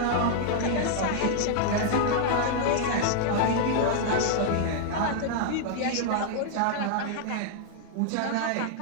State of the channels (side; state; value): both; different; correlation -0.01